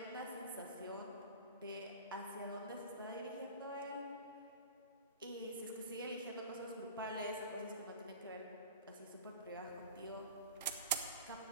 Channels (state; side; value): inverted; both; correlation -0.36